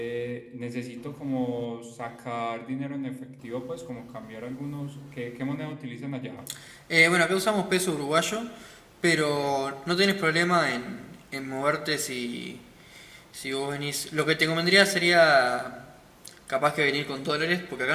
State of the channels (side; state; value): both; identical; correlation 1.00